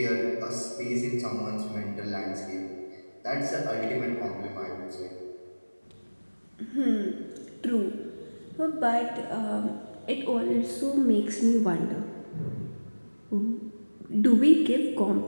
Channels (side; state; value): both; inverted; correlation -1.00